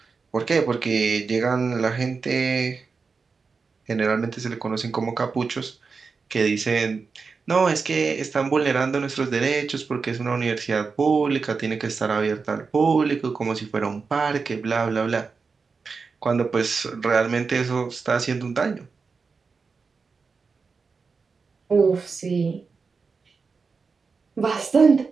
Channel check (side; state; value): left; quieter; 4.8 dB